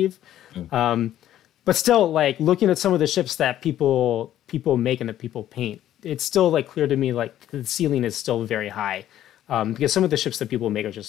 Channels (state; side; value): quieter; right; 12.1 dB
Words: Mm, um, but still, like looking at some of the ships that people make and that people paint, it's still like clear to me like the ceiling is still very high, because some of the ships that people make are